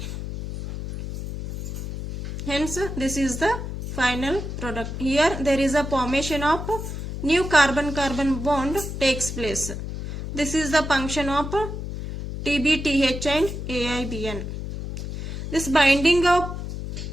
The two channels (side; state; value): left; noise; hum, 6 dB below the sound